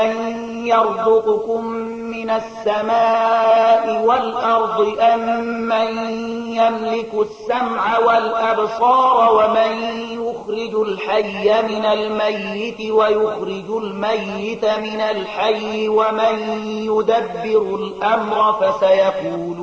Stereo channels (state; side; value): identical; both; correlation 1.00